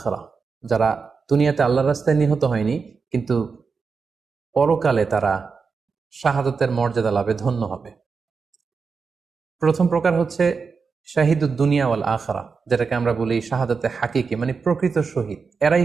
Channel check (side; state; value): left; quieter; 5.1 dB